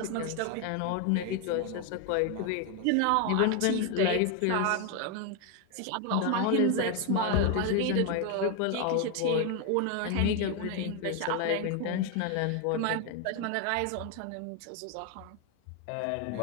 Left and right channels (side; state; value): both; different; correlation 0.01